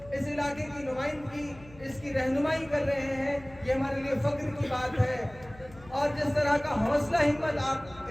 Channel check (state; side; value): noise; left; hum, 21 dB below the sound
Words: इस इलाके की नुमाइंदगी, इसकी रहनुमाई कर रहे हैं, ये हमारे लिए फख्र की बात है। और जिस तरह का हौसला हिम्मत आप